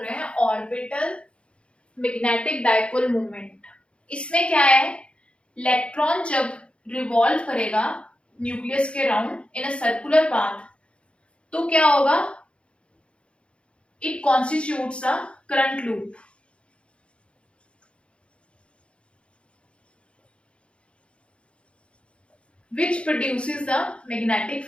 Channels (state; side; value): late; right; 0.058 ms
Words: हैं ऑर्बिटल मैग्नेटिक डाइपोल मोमेंट। इसमें क्या है, इलेक्ट्रॉन जब रिवॉल्व करेगा न्यूक्लियस के round in a circular path तो क्या होगा, it constitutes a current loop which produces the magnetic